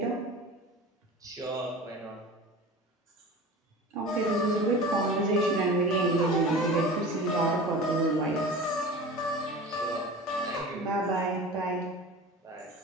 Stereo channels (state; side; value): normal; both; correlation 0.36